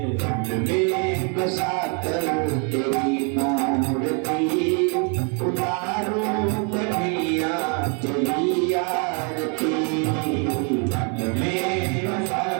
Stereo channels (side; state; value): left; quieter; 38.2 dB